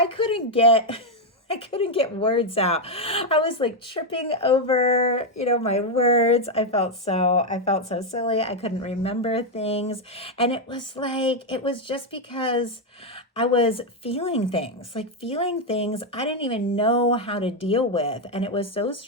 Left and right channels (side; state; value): both; normal; correlation 0.03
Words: couldn't get words out. I was tripping over, my words. I felt so silly. I couldn't remember things. And it was just because I was feeling things I didn't even know how to deal with. And it was so